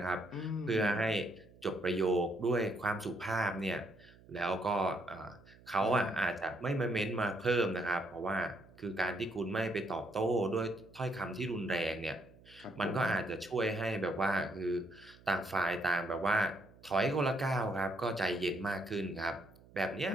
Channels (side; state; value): right; noise; hum, 24 dB below the sound